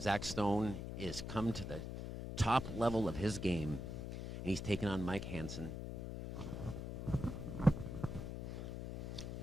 Stone is come to the top level of his game, and he's taking on Mike Hansen.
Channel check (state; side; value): noise; left; hum, 6 dB below the sound